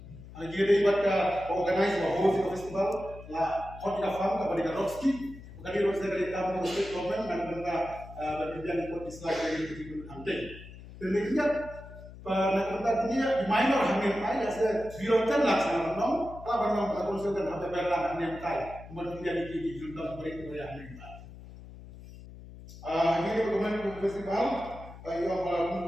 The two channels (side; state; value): left; noise; hum, 16 dB below the sound